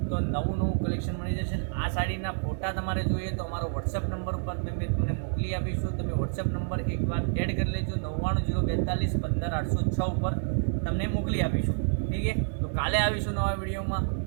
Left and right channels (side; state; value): left; silent; digital silence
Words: તો નવું કલેક્શન મળી જશે। આ સાડીના ફોટા તમારે જોઈએ તો અમારો વોટ્સએપ નંબર ઉપર તમને મોકલી આપીશું। તમે વોટ્સએપ નંબર એક વાર એડ કરી લેજો, 9902415806 ઉપર તમને મોકલી આપીશું, ઠીક છે। તો કાલે આવીશું નવા વિડીયોમાં।